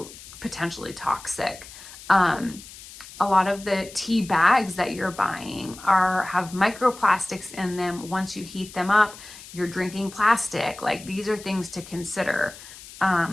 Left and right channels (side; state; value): left; noise; hiss, 17 dB below the sound